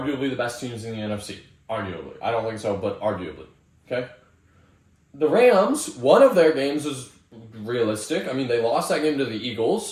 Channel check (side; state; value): both; identical; correlation 1.00